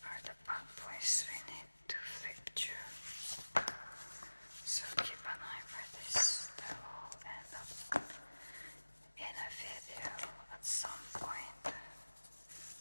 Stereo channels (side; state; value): both; inverted; correlation -1.00